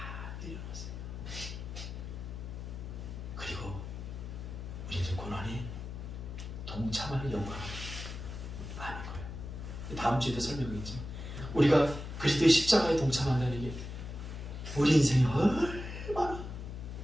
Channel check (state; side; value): noise; left; hum, 8 dB below the sound